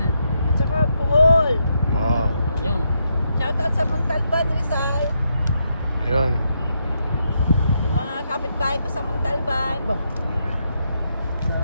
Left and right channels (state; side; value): inverted; both; correlation -0.81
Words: At saka Bohol. Wow. Ayun. Shout out sa Montalban, Rizal. Ayun. Yung mga kapitbahay ko sa Montalban.